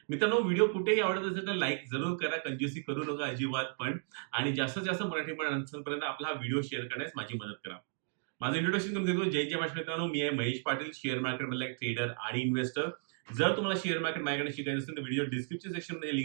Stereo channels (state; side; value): silent; left; 55 dB below the other